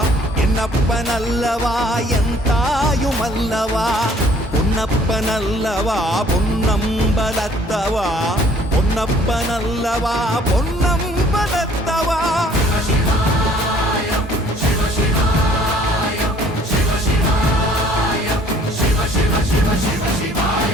என்னப்பனல்லவா என் தாயும் அல்லவா பொன்னப்பனல்லவா பொன்னம்பலத்தவா பொன்னப்பனல்லவா பொன்னம்பலத்தவா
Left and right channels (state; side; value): normal; both; correlation 0.57